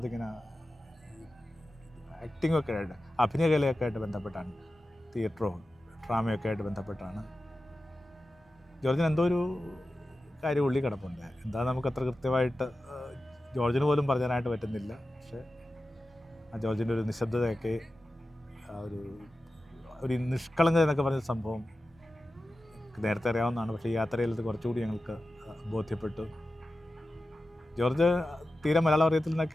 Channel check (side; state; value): both; normal; correlation 0.93